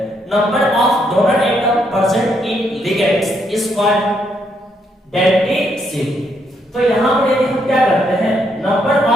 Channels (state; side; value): normal; both; correlation 0.75